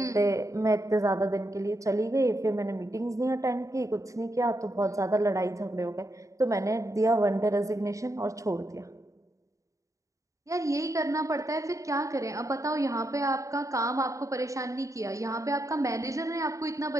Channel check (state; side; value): late; left; 0.16 ms